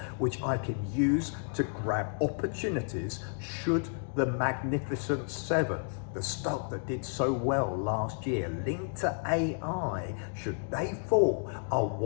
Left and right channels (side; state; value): right; silent; 57 dB below the other